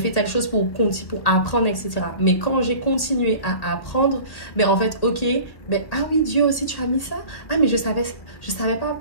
pour apprendre, etc. Mais quand j'ai continué à apprendre, ben en fait, ok, ben ah oui, Dieu aussi, tu as mis ça. Ah, mais je savais pas,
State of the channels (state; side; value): late; right; 1.7 ms